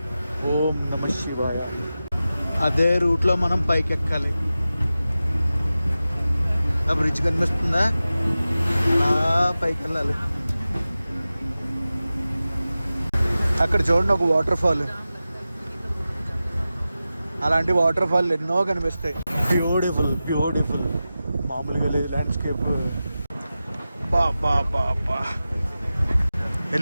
ఓం నమ శివాయ. అదే రూట్లో మనం పైకి ఎక్కాలి. ఆ బ్రిడ్జ్ కనిపిస్తుందా? అలా పైకి వెళ్ళాలి. అక్కడ చూడండి ఒక వాటర్ ఫాల్. అలాంటి వాటర్ ఫాల్ ఎన్నో కనిపిస్తాయి. Beautiful beautiful. మామూలుగా లేదు ల్యాండ్స్కేప్. బా బా బా బా.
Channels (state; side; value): inverted; both; correlation -0.94